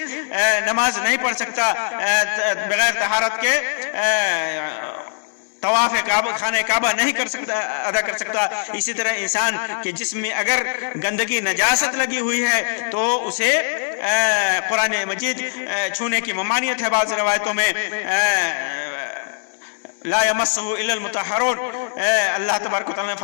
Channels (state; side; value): silent; right; 65 dB below the other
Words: نماز نہیں پڑھ سکتا، بغیر طہارت کے طواف خانہ کعبہ نہیں ادا کر سکتا۔ اسی طرح انسان کے جسم میں اگر گندگی نجاست لگی ہوئی ہے تو اسے قرآن مجید چھونے کی ممانعت ہے۔ بعض روایتوں میں لا یمسہ الا المطہرون، اللہ تبارک و تعالیٰ نے